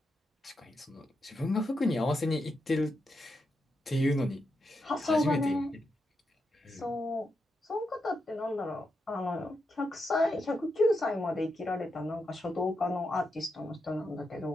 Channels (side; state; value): both; normal; correlation 0.85